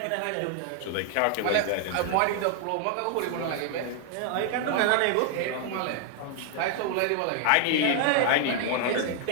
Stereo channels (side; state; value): both; different; correlation 0.00